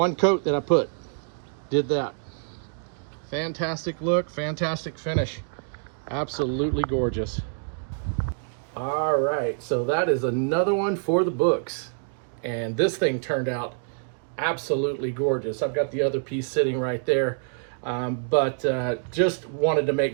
coat that I put did that. Fantastic look, fantastic finish, absolutely gorgeous. All right, so that is another one for the books, and this thing turned out absolutely gorgeous. I've got the other piece sitting right there, but just wanted to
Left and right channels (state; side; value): silent; left; digital silence